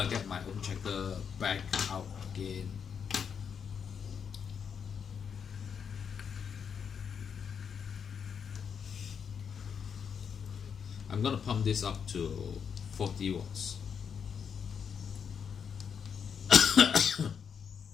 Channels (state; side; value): quieter; right; 7.0 dB